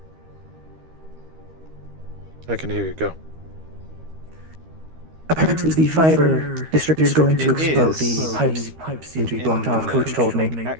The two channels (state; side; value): late; left; 13 ms